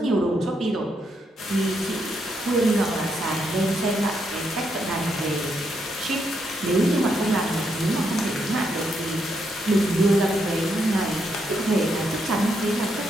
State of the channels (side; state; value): both; normal; correlation 0.78